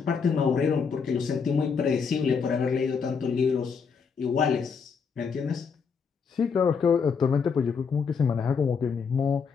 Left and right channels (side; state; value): right; quieter; 5.8 dB